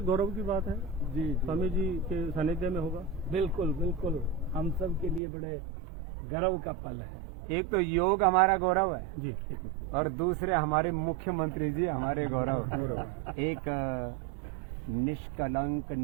गौरव की बात है जी, स्वामी जी के सानिध्य में होगा। बिल्कुल बिल्कुल, हम सब के लिए बड़े गर्व का पल है। एक तो योग हमारा गौरव है जी, और दूसरे हमारे मुख्यमंत्री जी हमारे गौरव। एक निष्कलंक,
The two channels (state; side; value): drops out; left; at 5.2 s